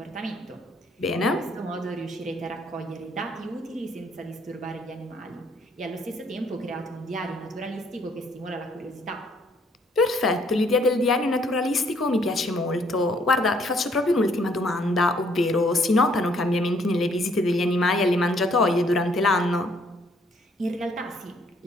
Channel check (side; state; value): both; normal; correlation 0.66